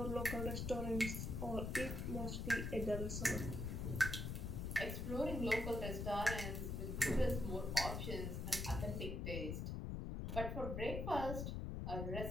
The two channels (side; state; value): left; noise; rumble, 2 dB below the sound